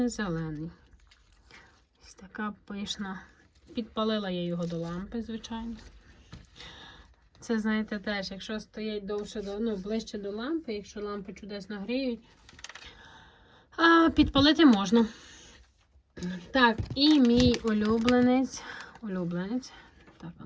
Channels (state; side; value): identical; both; correlation 1.00